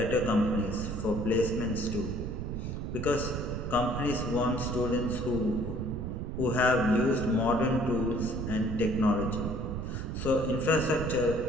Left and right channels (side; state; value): right; noise; rumble, 4 dB below the sound